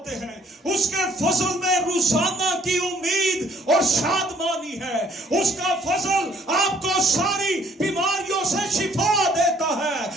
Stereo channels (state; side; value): normal; both; correlation 0.62